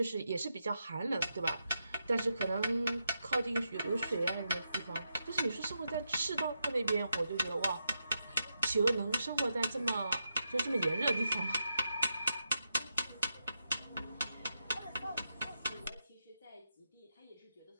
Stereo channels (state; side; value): inverted; both; correlation -0.85